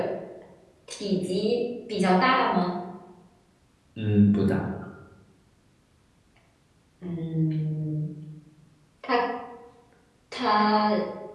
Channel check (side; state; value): both; identical; correlation 1.00